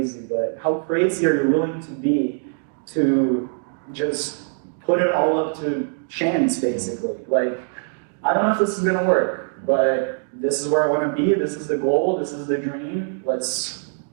but how crazy are you willing to be to just put it all up to chance, basically? Like, I don't know if this is gonna work, but this is where I wanna be, this is the goal, this is the dream, let's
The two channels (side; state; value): left; silent; 64 dB below the other